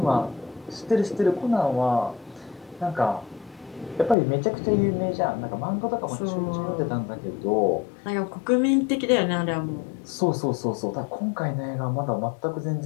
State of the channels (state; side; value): drops out; right; at 4.2 s